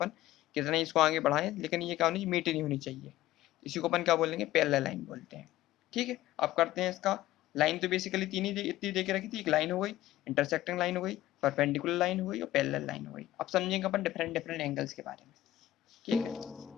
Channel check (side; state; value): right; quieter; 14.7 dB